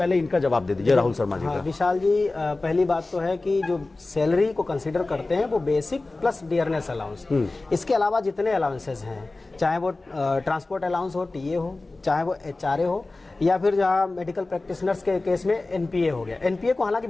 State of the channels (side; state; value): right; quieter; 3.2 dB